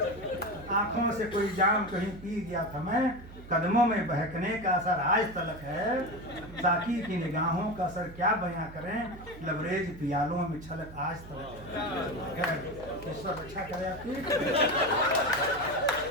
आंखों से कोई जाम कहीं पी गया था मैं, कदमों में बहकने का असर आज तलक है, साकी की निगाहों का असर क्या बयां करें, लबरेज पियालों में छलक आज तलक है। ईश्वर अच्छा करे आपकी।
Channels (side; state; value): right; noise; hum, 16 dB below the sound